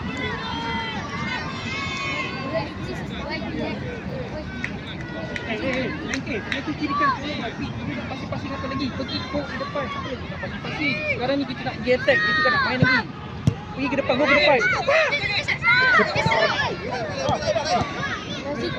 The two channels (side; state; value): both; identical; correlation 1.00